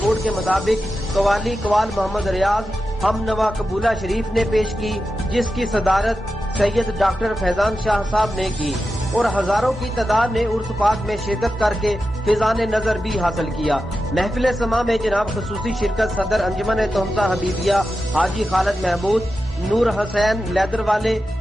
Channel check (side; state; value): both; normal; correlation 0.91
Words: کے مطابق قوالی قوال محمد ریاض ہم نوا قبولہ شریف نے پیش کی، جس کی صدارت سید ڈاکٹر فیضان شاہ صاحب نے کی، اور ہزاروں کی تعداد نے عرس پاک میں شرکت کر کے فیضان نظر بھی حاصل کیا۔ محفل سما میں جناب خصوصی شرکت صدر انجمن تہمتہ حبیبیہ حاجی خالد محمود، نور حسین لیدر والے،